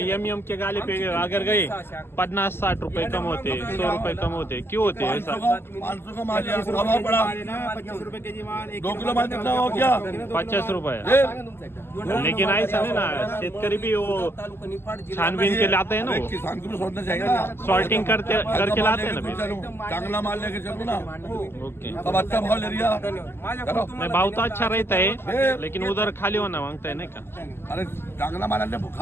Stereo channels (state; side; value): late; right; 0.12 ms